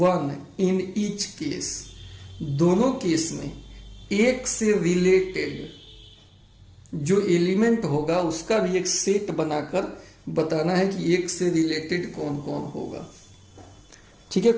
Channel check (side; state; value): both; identical; correlation 1.00